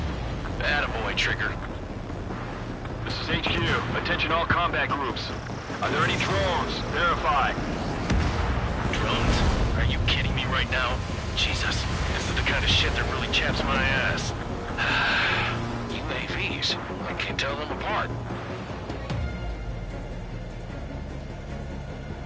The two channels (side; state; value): both; identical; correlation 1.00